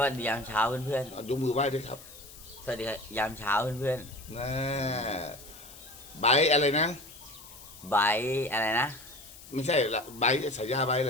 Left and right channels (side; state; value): left; noise; hiss, 18 dB below the sound